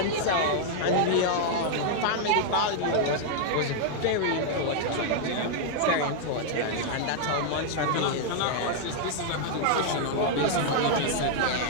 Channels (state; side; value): different; both; correlation -0.01